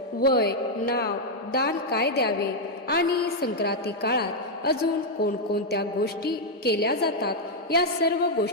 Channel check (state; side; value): normal; both; correlation -0.01